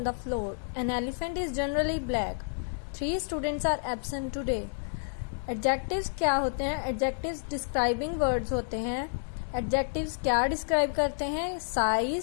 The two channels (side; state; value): right; silent; digital silence